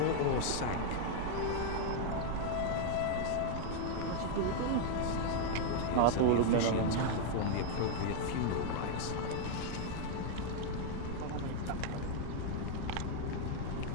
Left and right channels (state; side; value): different; both; correlation 0.00